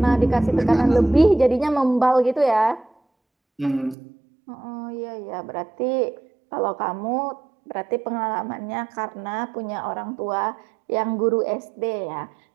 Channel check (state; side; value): drops out; left; at 4.0 s